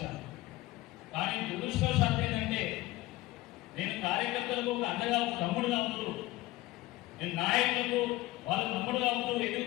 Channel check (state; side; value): quieter; right; 18.6 dB